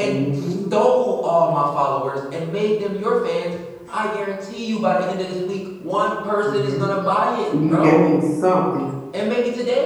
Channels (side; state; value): both; identical; correlation 1.00